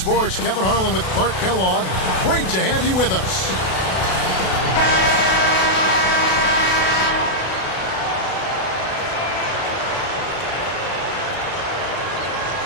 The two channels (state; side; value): late; right; 32 ms